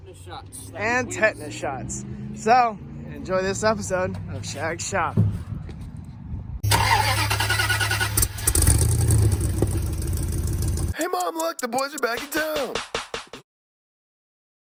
shots. And tetanus shots. So, enjoy this episode of Shag's shop. Hey Mom, look, the boys are back in town.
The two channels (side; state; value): both; identical; correlation 1.00